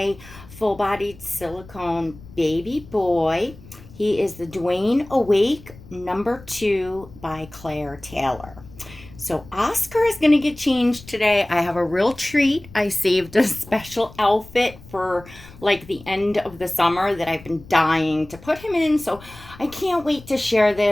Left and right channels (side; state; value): left; noise; rumble, 20 dB below the sound